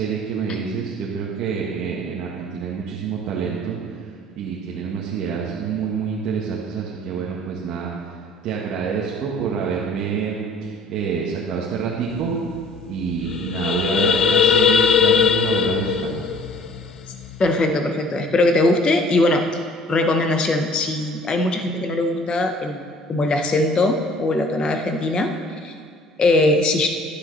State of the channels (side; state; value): both; normal; correlation 0.52